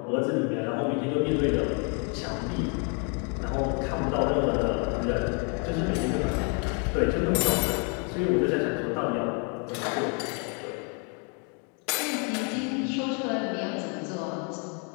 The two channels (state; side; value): quieter; right; 37.5 dB